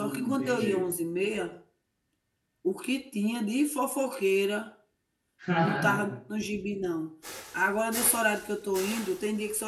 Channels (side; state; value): both; identical; correlation 1.00